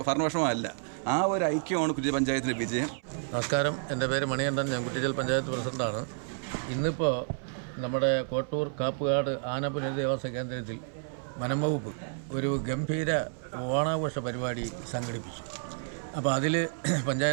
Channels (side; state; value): left; silent; 58 dB below the other